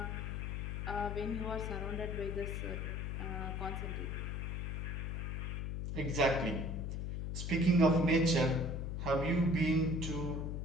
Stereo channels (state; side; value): noise; left; hum, 3 dB below the sound